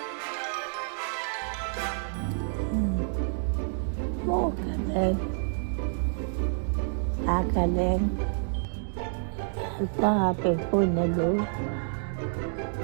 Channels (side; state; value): left; silent; digital silence